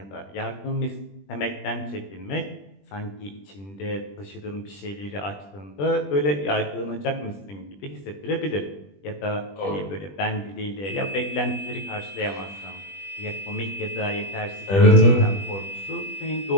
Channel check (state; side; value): late; right; 20 ms